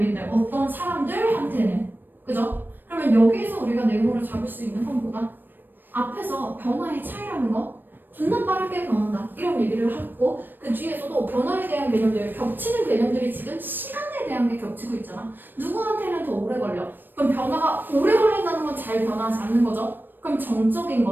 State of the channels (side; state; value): left; late; 0.093 ms